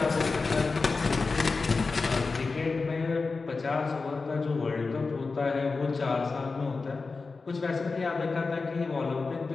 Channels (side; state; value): right; quieter; 4.2 dB